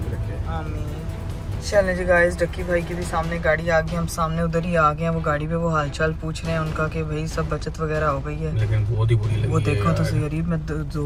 के रखे। आमीन। चलें जी गाइस, डक्की भाई की भी सामने गाड़ी आ गई, हम सामने उधर ही आ गए हैं। वो गाड़ी पे वो हालचाल पूछ रहे हैं उनका कि भाई सब बचत वगैरह हो गई है। लेकिन बहुत ही बुरी लगी वो देखो तो सही गरीब, मैं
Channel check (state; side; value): identical; both; correlation 1.00